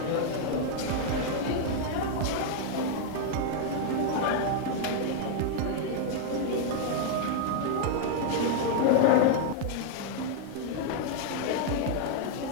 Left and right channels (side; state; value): both; different; correlation -0.01